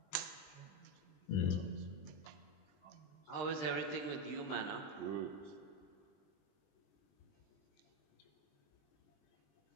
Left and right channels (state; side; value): late; right; 20 ms